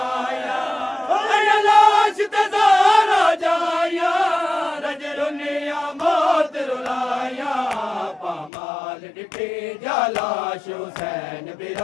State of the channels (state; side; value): drops out; right; at 8.5 s